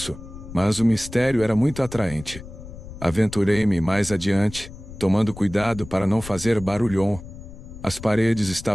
mas o mistério era muito atraente. Aventurei-me mais adiante, tomando cuidado para não fazer barulhão. As paredes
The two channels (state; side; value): noise; left; rumble, 14 dB below the sound